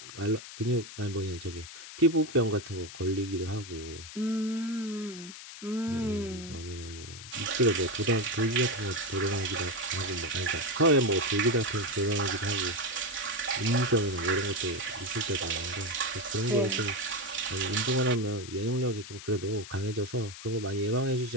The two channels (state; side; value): noise; left; hiss, 13 dB below the sound